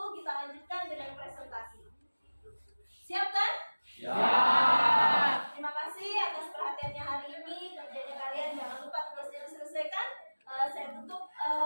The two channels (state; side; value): inverted; both; correlation -1.00